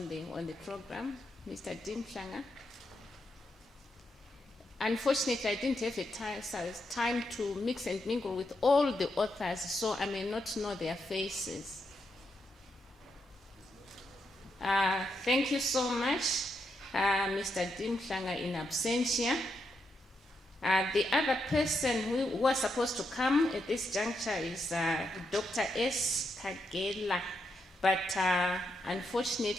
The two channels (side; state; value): both; normal; correlation 0.82